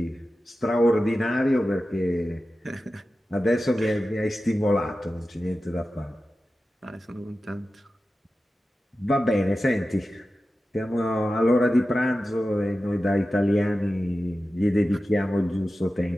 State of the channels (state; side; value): normal; both; correlation 0.93